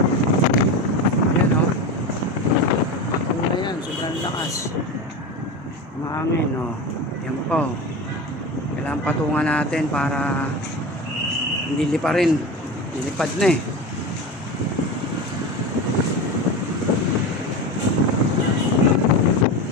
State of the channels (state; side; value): normal; both; correlation 0.25